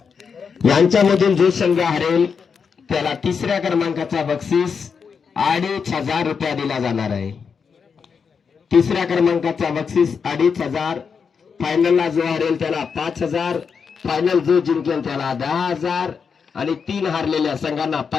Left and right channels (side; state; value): right; quieter; 6.0 dB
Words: यांच्यामधून जो संघ हरेल त्याला 3ऱ्या क्रमांकाचा बक्षीस 2500 रुपया दिला जाणार आहे. 3ऱ्या क्रमांकाचा बक्षीस 2500. फायनलला जो हरेल त्याला 5000. फायनल जो जिंकेल त्याला 10,000 आणि 3 हारलेल्या संघांना